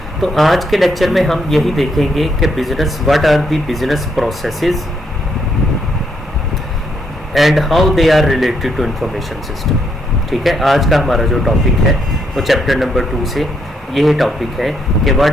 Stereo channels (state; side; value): normal; both; correlation 0.75